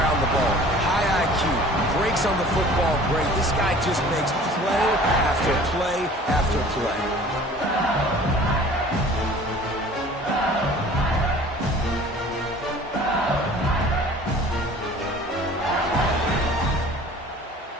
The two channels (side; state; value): both; normal; correlation 0.47